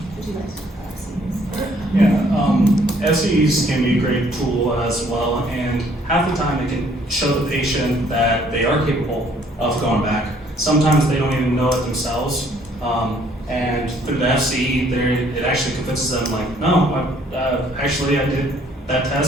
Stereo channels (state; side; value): normal; both; correlation 0.62